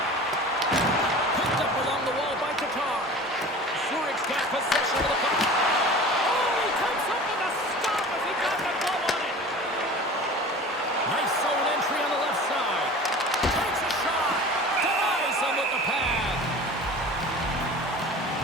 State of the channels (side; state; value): both; normal; correlation 0.39